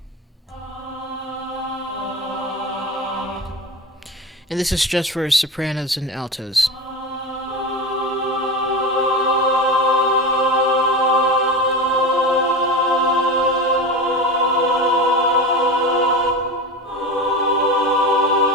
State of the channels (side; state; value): both; normal; correlation 0.26